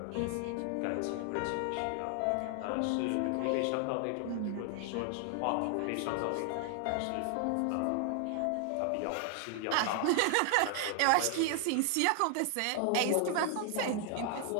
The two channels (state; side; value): different; both; correlation 0.00